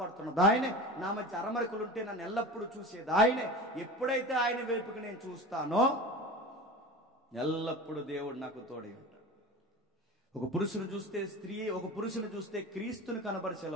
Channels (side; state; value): both; normal; correlation 0.33